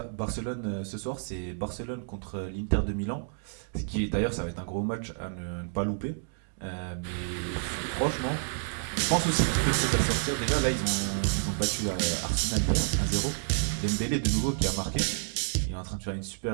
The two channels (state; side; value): silent; left; digital silence